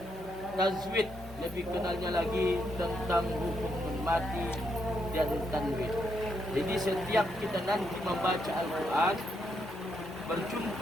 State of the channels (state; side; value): normal; both; correlation 0.78